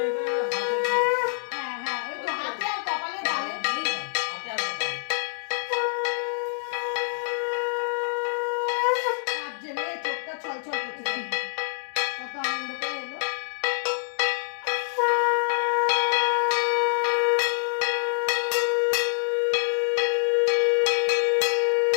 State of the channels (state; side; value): silent; right; digital silence